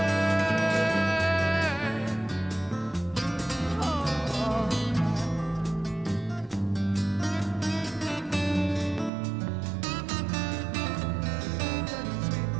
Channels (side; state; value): left; drops out; at 9.1 s